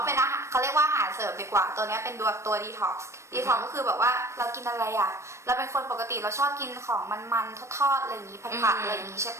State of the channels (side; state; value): left; late; 0.13 ms